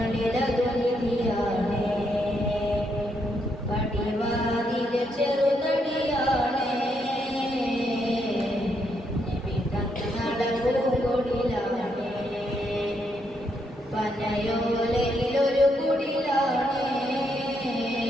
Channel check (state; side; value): normal; both; correlation 0.77